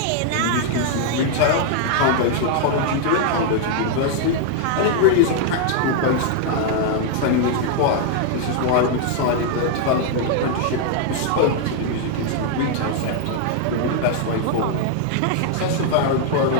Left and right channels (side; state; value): both; different; correlation 0.00